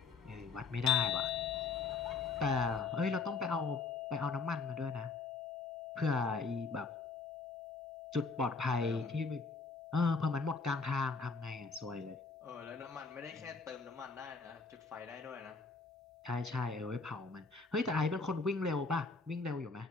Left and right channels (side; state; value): right; quieter; 4.4 dB